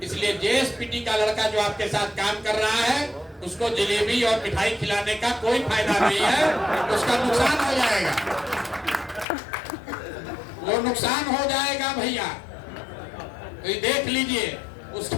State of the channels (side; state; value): right; drops out; at 9.2 s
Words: इसलिए जेएसपीटी का लड़का जो आपके साथ काम कर रहा है उसको जलेबी और मिठाई खिलाने का कोई फायदा नहीं है, उसका नुकसान हो जाएगा। वो नुकसान हो जाएगा भैया। तो ये देख लीजिए,